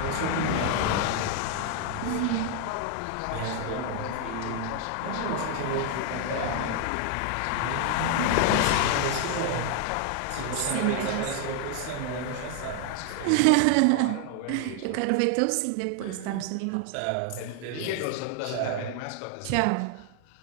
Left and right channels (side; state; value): both; different; correlation 0.00